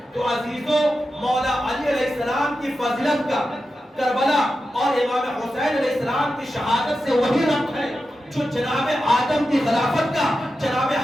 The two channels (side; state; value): both; normal; correlation 0.91